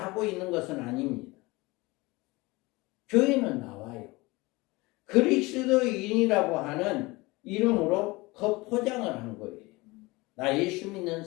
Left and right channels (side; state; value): right; quieter; 22.8 dB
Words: 하고 있는 것은 아닙니다. 교회는 나와요. 그리스도인이라고 하는 이름으로 겉포장을 한 거예요. 나 예수 믿는